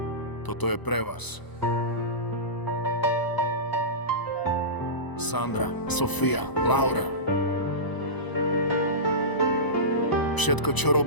Toto je pre vás. Sandra, Sofia, Laura. Všetko, čo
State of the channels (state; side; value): late; right; 1.0 ms